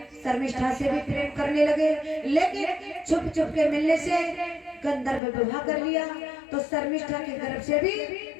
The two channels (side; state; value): right; drops out; at 5.2 s